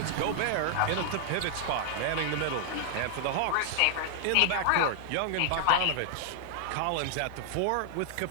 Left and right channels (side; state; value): both; different; correlation -0.01